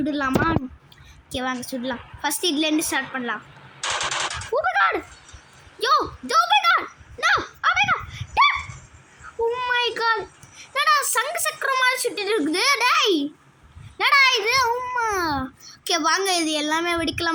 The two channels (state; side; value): identical; both; correlation 1.00